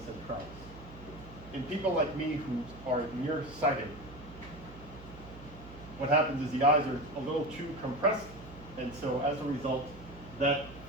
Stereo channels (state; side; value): noise; right; hum, 16 dB below the sound